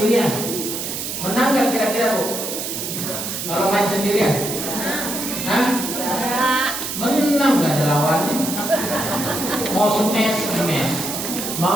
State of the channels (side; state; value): right; noise; hiss, 5 dB below the sound